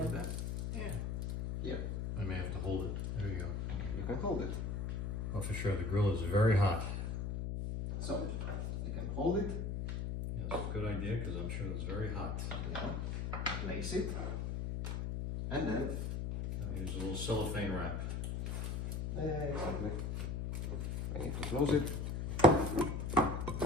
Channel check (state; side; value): noise; left; hum, 2 dB below the sound